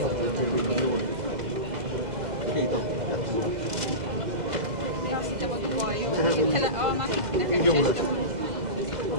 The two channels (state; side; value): late; left; 2.0 ms